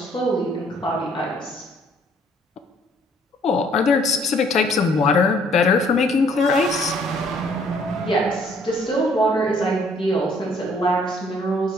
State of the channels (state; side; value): normal; both; correlation 0.62